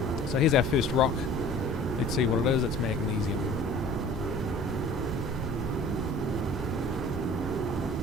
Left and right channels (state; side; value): normal; both; correlation 0.47